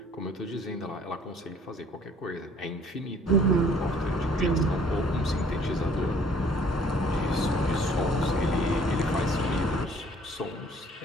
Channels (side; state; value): both; normal; correlation 0.57